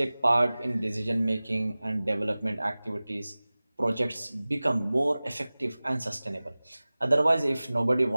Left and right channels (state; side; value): inverted; both; correlation -0.99